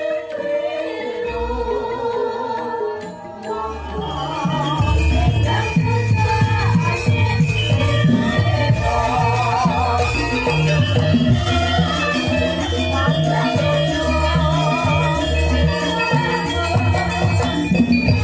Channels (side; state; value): both; identical; correlation 1.00